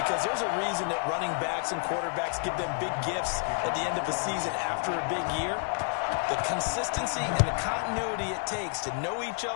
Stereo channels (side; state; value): right; silent; 55 dB below the other